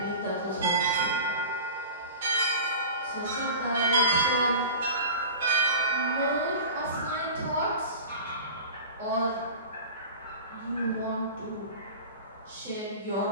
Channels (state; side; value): inverted; both; correlation -0.34